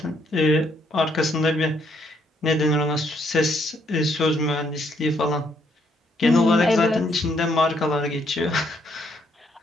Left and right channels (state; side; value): normal; both; correlation 0.71